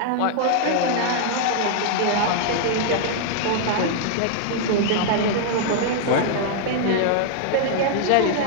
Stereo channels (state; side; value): different; both; correlation 0.00